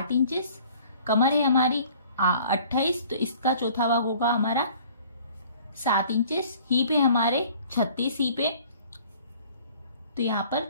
इंचेस, कमर है हमारी 28, तो इसका चौथा भाग होगा हमारा 7 इंचेस, हीप है हमारे 36 हीप है, तो यहाँ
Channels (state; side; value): inverted; both; correlation -0.52